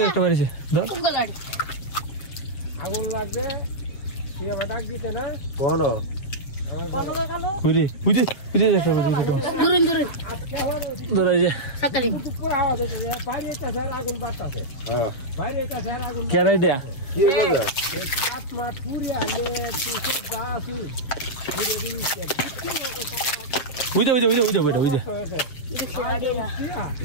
একটা বাড়িছে ধর गलाड़ी আগুন লাগে কি বাটাক দিতে না কোন কুরি উজে একটা दूरन ধর এই যে सकरी বাইরে একটা স্যার আগুন বাতাছে হ্যাঁ বাইরে একটা স্যার আগুন কেরাই দেয়া কি হবে সাত মাস পুরি আগে 280 উজে বেটা উজে देखिए आड़ीरा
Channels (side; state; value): right; late; 7.2 ms